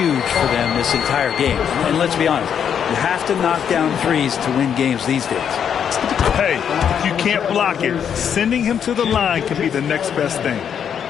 for them this entire game. And let's be honest, you have to knock down threes to win games these days. Hey, if you can't block it, sending him to the line can be the next best thing.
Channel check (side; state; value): right; quieter; 8.1 dB